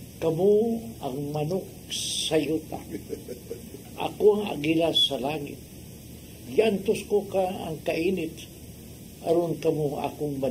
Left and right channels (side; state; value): both; identical; correlation 1.00